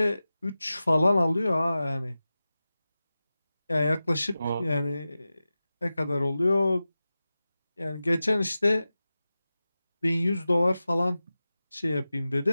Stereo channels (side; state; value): both; inverted; correlation -0.95